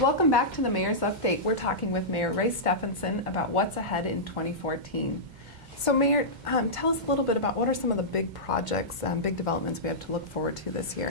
Welcome back to the Mayor's Update. We're talking with Mayor Ray Stephanson about what's ahead in 2014. So Mayor, tell us a little bit about what are some of the big projects, big developments we have to look forward to this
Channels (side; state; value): left; late; 2.1 ms